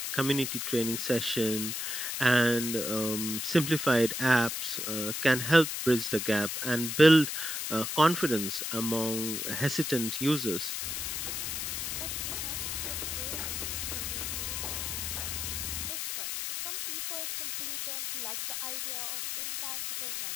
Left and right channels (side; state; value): left; noise; hiss, 3 dB below the sound